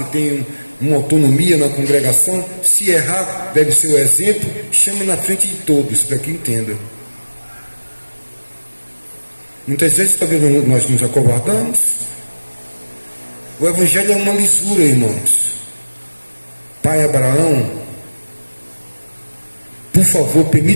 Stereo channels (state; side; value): inverted; both; correlation -1.00